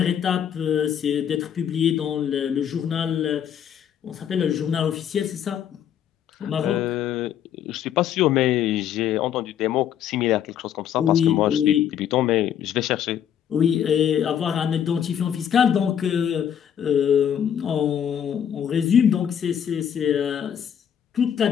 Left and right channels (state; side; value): quieter; right; 9.2 dB